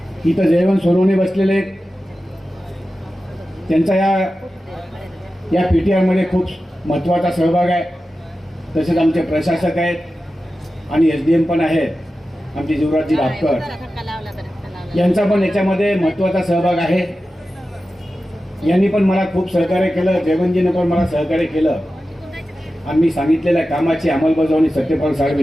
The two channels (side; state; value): both; normal; correlation 0.93